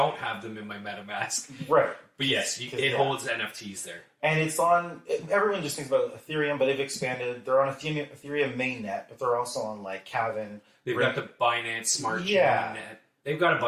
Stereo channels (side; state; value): both; identical; correlation 1.00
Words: have them in my MetaMask. Right. But yes, it holds NFTs there. And it's on, everyone just thinks about Ethereum, but they've expanded. They're on Ethereum mainnet, but they're also on like Kavin. They've got the Binance Smart Chain mainnet. They've got a